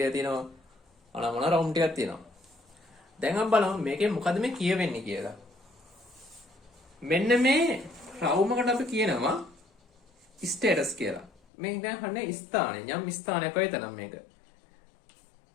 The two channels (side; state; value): right; drops out; at 11.3 s